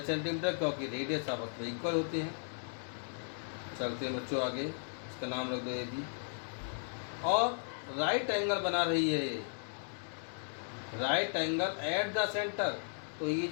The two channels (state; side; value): silent; right; digital silence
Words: सेंटीमीटर, क्योंकि रेडियस आपस में इक्वल होते हैं. चलते हैं बच्चों आगे. इसका नाम रख दो ए बी. और राइट एंगल बना रही है ये, right angle at the centre. तो ये